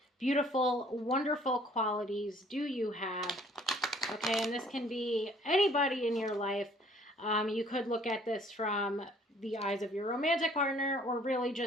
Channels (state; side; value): normal; both; correlation 0.58